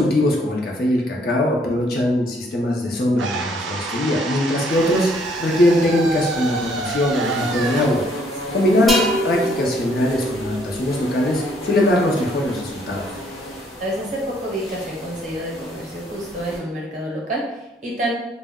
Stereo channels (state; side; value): normal; both; correlation 0.66